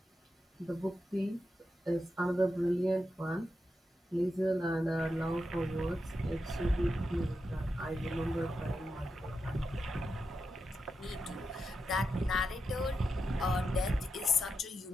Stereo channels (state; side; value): normal; both; correlation 0.87